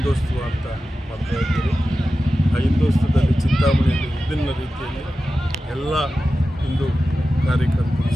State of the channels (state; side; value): normal; both; correlation 0.93